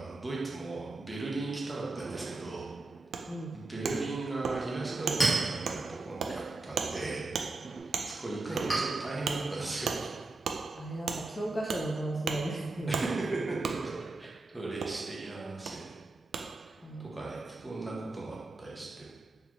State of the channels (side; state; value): left; quieter; 3.2 dB